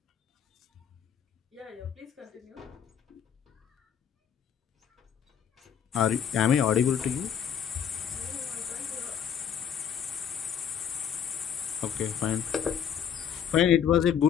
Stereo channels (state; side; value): quieter; right; 8.4 dB